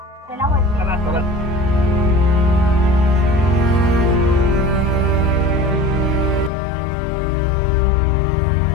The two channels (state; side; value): drops out; right; at 6.5 s